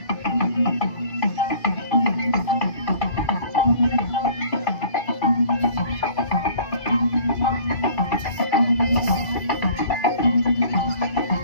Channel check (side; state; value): right; late; 1.8 ms